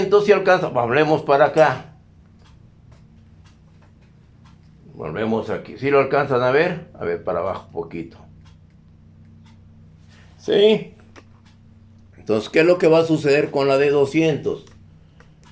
si alcanza. Hablemos para acá. Volvemos aquí. ¿Sí lo alcanzan a ver? A ver, para abajo un poquito. ¿Sí? Entonces, ¿qué es lo que va a suceder con la de 200?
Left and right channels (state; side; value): identical; both; correlation 1.00